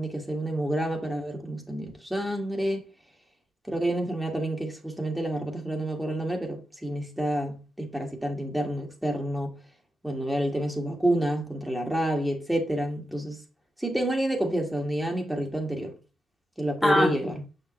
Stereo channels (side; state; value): both; normal; correlation 0.89